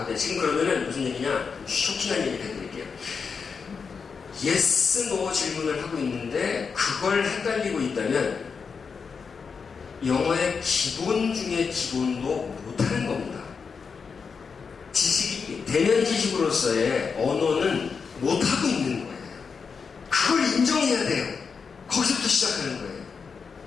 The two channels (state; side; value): quieter; right; 5.6 dB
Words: 지금 그러면은 무슨 얘기냐? 쇼킹한 얘기를 해드릴게요. yes, no 질문을 하고 있는데 그걸 헷갈리고 있다면 영어의 기본 중에 기본도 못하는 겁니다. 지식이, 대면 지식으로서의 언어는 못하고 있는 거예요. 그걸 인정해야 돼요. 거기서부터 시작하는 거예요.